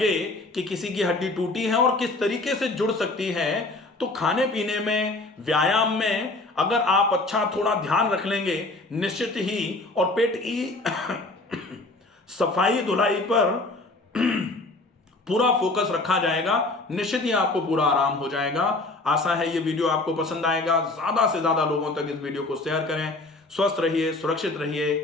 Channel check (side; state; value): right; quieter; 3.0 dB